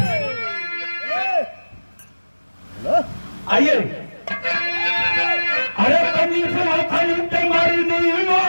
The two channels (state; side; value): inverted; both; correlation -1.00